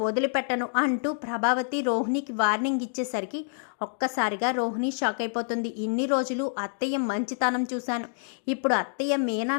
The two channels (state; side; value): silent; right; digital silence